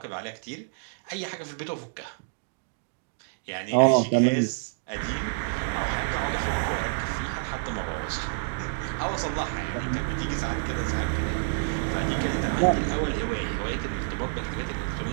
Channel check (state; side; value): silent; left; digital silence